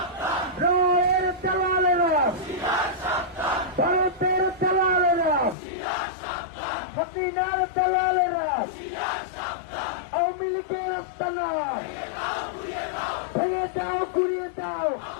রায়ের দালালেরা, ভারতের দালালেরা, হাসিনার দালালেরা, আওয়ামী লীগের আস্তানা ভেঙে দাও, ঘুরিয়ে দাও,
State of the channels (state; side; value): drops out; right; at 5.6 s